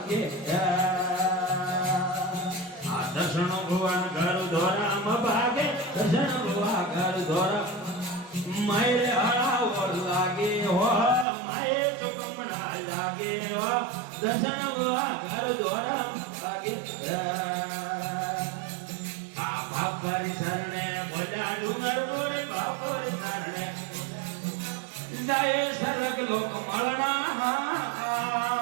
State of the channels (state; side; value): drops out; left; at 11.2 s